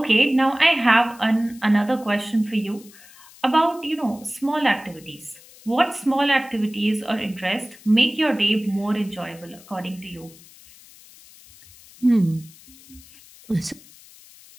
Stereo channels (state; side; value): noise; left; hiss, 23 dB below the sound